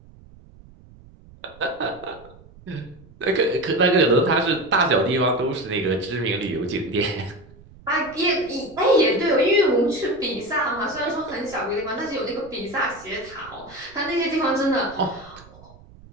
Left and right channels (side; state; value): right; noise; rumble, 23 dB below the sound